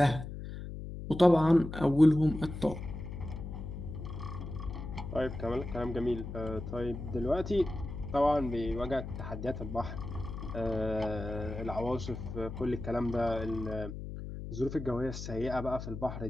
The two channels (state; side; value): noise; left; hum, 8 dB below the sound